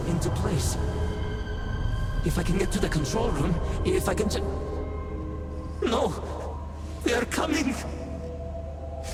into place. If I can get to the control room, if I can just... No! They are coming!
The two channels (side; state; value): both; identical; correlation 1.00